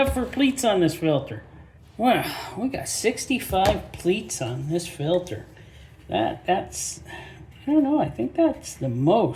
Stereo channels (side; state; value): both; identical; correlation 1.00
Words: for pleats on this filter. Wow, we got 65 pleats on this filter. That's, I don't know, I think that's the